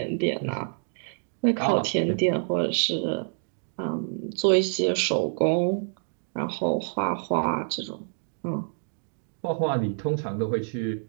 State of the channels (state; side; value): silent; left; digital silence